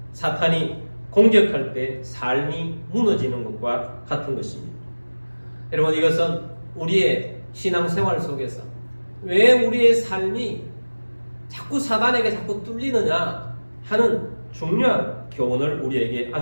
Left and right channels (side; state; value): both; inverted; correlation -1.00